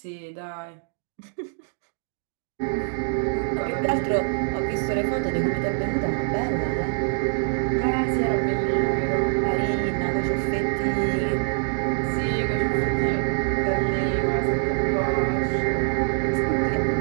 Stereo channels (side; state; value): left; silent; digital silence